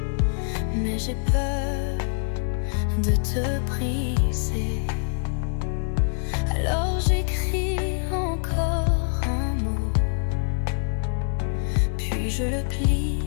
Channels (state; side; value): silent; right; digital silence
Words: mais j'ai peur de te briser. Alors j'écris encore un mot, puis je le plie